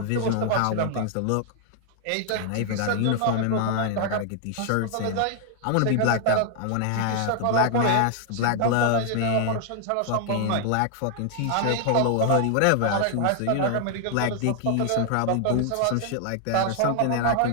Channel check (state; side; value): different; both; correlation 0.00